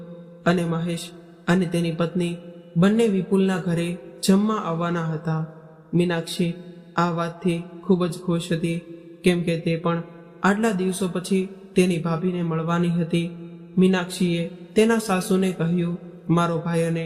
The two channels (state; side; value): identical; both; correlation 1.00